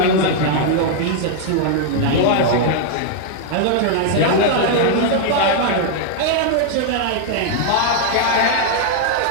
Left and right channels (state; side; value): different; both; correlation 0.00